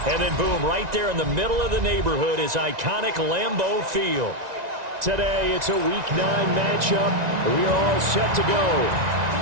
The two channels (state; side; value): late; left; 1.9 ms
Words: and then boom, right there in the middle of the neighborhood is iconic Lambeau Field. Today, it's a Week 9 matchup. We are all set to go,